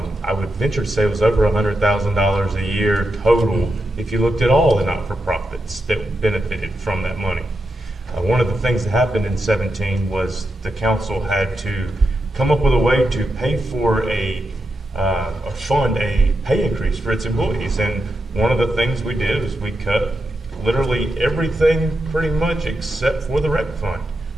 I would venture to say it was over $100,000 a year total if you looked at all the not-for-profits that benefited from that money. One of the things that happened in 17 was the council had to come up with a way to pay for a fund a pay increase for its employees. And one of the things we did is we cut literally everything pretty much except for the rec fund.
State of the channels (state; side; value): normal; both; correlation 0.86